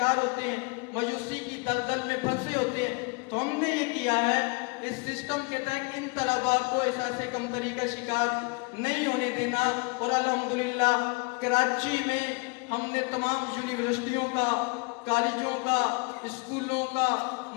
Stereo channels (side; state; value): right; quieter; 30.1 dB